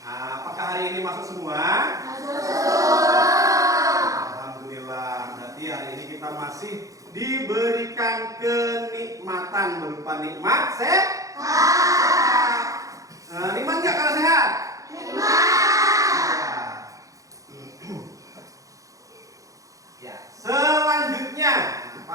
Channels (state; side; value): late; left; 0.16 ms